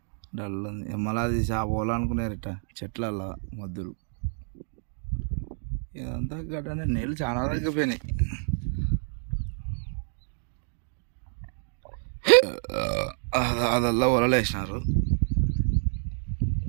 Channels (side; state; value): left; silent; 59 dB below the other